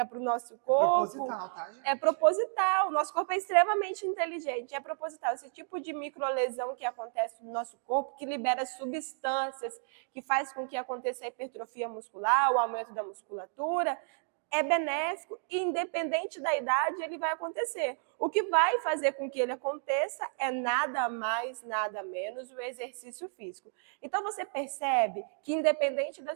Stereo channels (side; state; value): left; silent; 56 dB below the other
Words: para o nosso corpo... É proposital, tá, gente? É proposital. O nosso corpo é extremamente inteligente. É proposital. Esse tipo de microlesão que acontece no nosso corpo, que libera substâncias, que faz com que aconteça a hipertrofia muscular, o aumento da musculatura, é benéfico e, independente da idade, ele vai acontecer. O que vai fazer com que ele aconteça é nada mais, nada menos o exercício físico. Então, você percebe que, independente da